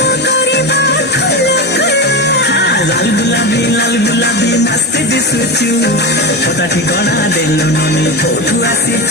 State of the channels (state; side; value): normal; both; correlation 0.19